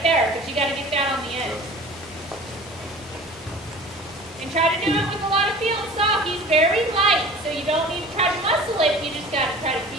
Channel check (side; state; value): both; normal; correlation 0.41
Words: there, but you got to get that on the end. And try to do it with a lot of feel and soft. He's very light, so you don't need to try to muscle it. You just got to try to